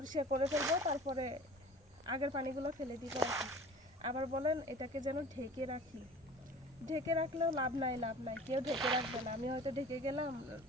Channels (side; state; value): both; normal; correlation 0.43